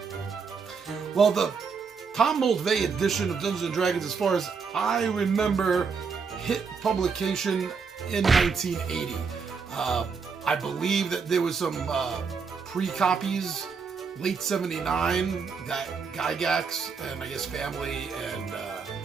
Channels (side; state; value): left; quieter; 5.5 dB